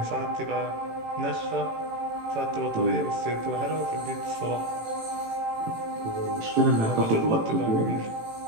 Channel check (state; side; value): late; left; 18 ms